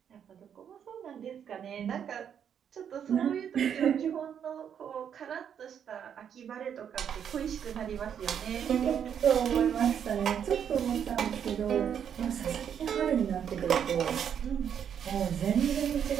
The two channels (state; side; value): quieter; left; 8.4 dB